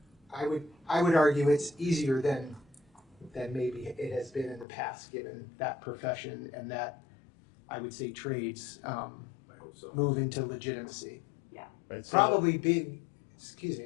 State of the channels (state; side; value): drops out; right; at 4.7 s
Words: I would argue it's easier than maybe it has been in the past, given that profession and that, I would say, trades move into legitimacy. Yeah. Right, so Probably